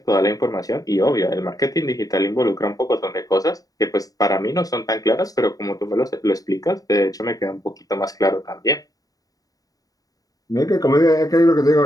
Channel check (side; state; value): right; late; 0.18 ms